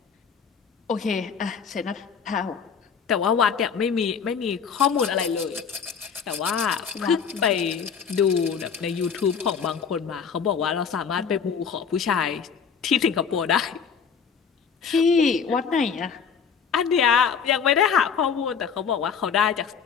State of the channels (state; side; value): quieter; right; 6.6 dB